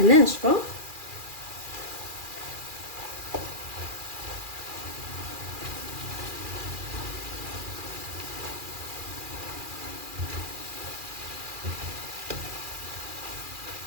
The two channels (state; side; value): late; left; 2.4 ms